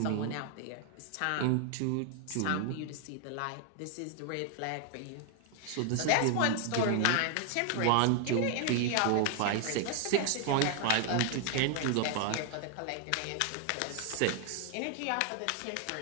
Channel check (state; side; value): different; both; correlation 0.00